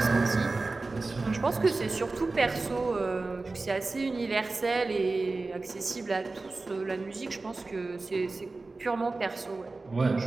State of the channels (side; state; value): left; quieter; 3.5 dB